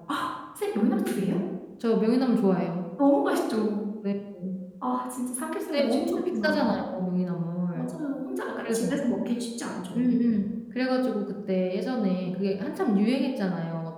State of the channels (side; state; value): both; identical; correlation 1.00